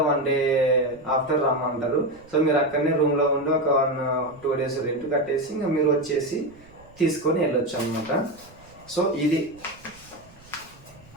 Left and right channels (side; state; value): right; noise; rumble, 25 dB below the sound